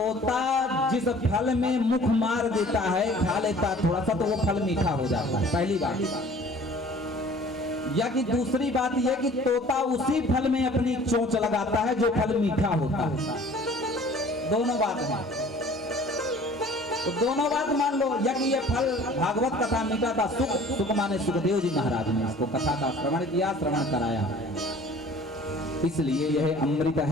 जिस फल में मुख मार देता है, खा लेता थोड़ा सा, तो वो फल मीठा हो जाता है, पहली बात। या कि दूसरी बात यह कि तोता उसी फल में अपनी चोंच लगाता है जो फल मीठा होता है। दोनों बात है, तो दोनों बात मान लो। या कि ये फल भागवत कथा मीठा था, सुख माने सुखदेव जी महाराज ने इसको कथा का श्रवण किया, श्रवण कराया, इसलिए यह अमृत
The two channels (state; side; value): normal; both; correlation 0.49